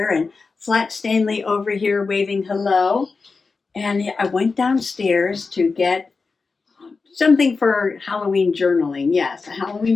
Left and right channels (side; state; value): right; quieter; 4.4 dB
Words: and Flat Stanley over here waving hello. And I went downstairs to get something for Halloween journaling. Yes,